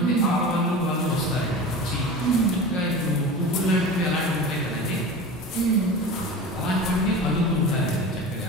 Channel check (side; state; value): both; normal; correlation 0.33